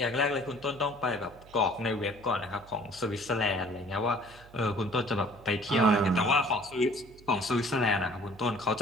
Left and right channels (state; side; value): noise; right; hum, 22 dB below the sound